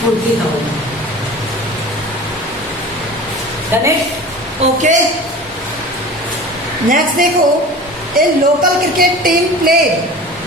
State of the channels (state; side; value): normal; both; correlation 0.38